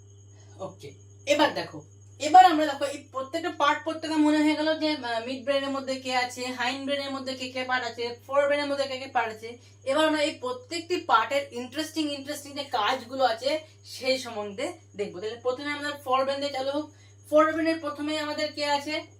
ওকে, এবার দেখো, এবার আমরা দেখো এই প্রত্যেকটা পার্ট প্রত্যেকটা মনে হয়ে গেল যে মিড ব্রেনের মধ্যে কে আছে, হাইন্ড ব্রেনের মধ্যে কে কে পার্ট আছে, ফোর ব্রেনের মধ্যে কে কে পার্ট আছে। এবার আমরা এই প্রত্যেকটি পার্টের ইন্টারেস্টিং যে কাজগুলো আছে সেই সম্বন্ধে দেখবো। তাহলে প্রথমে আমাদের ফোর ব্রেন দিয়ে চালু হোক। ফোর ব্রেনের প্রথমে আমাদের কে আছে?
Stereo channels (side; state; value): both; identical; correlation 1.00